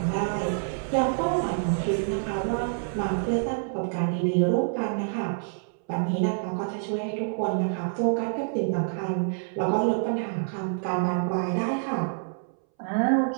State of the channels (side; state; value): left; silent; 60 dB below the other